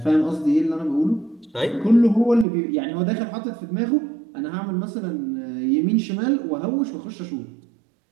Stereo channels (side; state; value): left; drops out; at 2.5 s